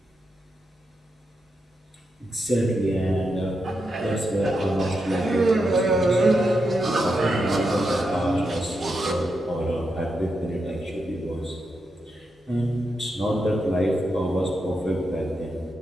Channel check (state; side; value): normal; both; correlation 0.85